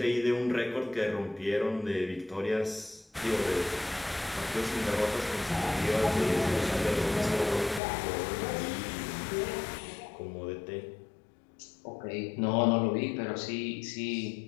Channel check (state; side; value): drops out; right; at 7.8 s